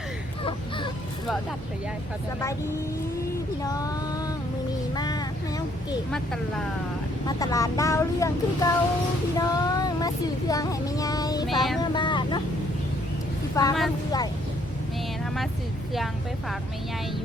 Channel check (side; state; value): both; normal; correlation 0.66